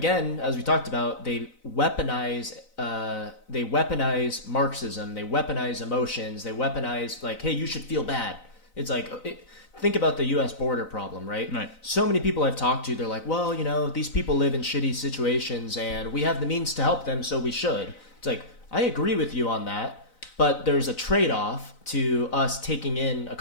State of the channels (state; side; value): late; right; 4.0 ms